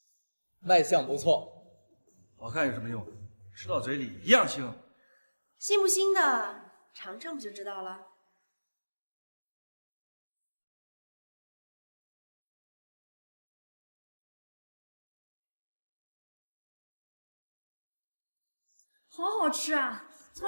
卖相不错，好看有什么用？吃到嘴里一样腥。腥不腥的，尝尝不就知道了。好好吃啊！从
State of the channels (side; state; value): both; inverted; correlation -1.00